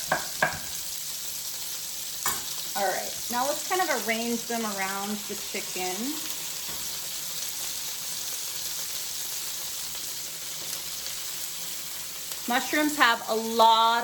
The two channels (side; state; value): both; identical; correlation 1.00